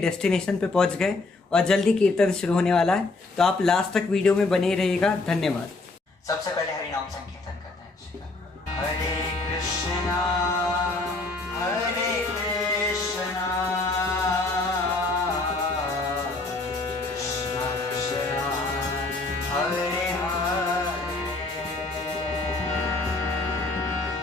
पे पहुंच गए और जल्दी कीर्तन शुरू होने वाला है, तो आप लास्ट तक वीडियो में बने रहिएगा। धन्यवाद। सबसे पहले हरि नाम संकीर्तन करते हैं। हरे कृष्णा हरे कृष्णा कृष्णा कृष्णा हरे हरे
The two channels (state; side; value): quieter; right; 3.3 dB